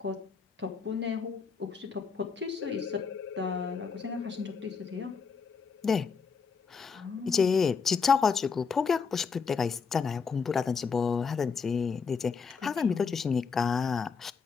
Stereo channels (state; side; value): quieter; right; 5.6 dB